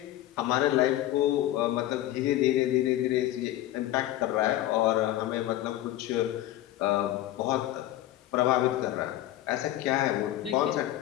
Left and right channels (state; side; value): quieter; right; 14.3 dB